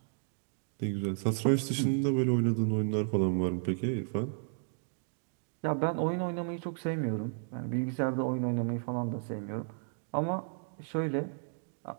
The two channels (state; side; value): silent; left; digital silence